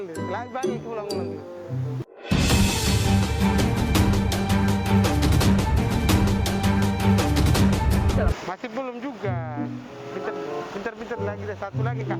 Lagi balik ulang-ulang. Masih belum juga. Pintar-pintar lagi deh, satu lagi kak.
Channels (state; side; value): identical; both; correlation 1.00